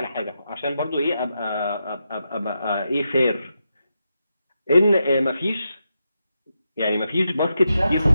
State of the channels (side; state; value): both; inverted; correlation -0.86